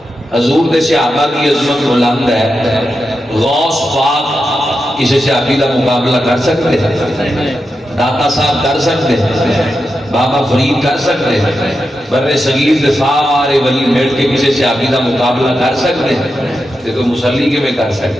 حضور دے صحابہ کی عظمت بلند ہے غوث پاک کسی صحابی کا مقابلہ کر سکتے داتا صاحب کر سکتے بابا فرید کر سکتے بر صغیر دے سارے ولی مل کے کسی صحابی کا مقابلہ کر سکتے تو مسلی کے میں کر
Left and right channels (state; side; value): normal; both; correlation 0.88